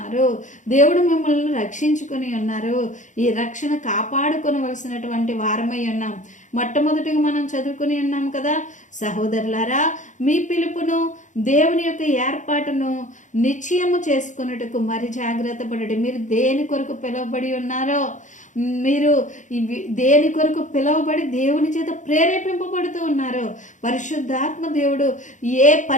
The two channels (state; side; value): late; right; 0.36 ms